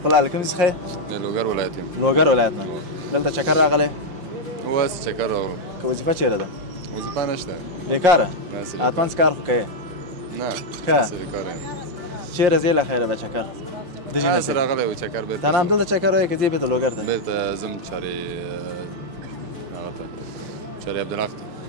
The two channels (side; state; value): left; late; 5.7 ms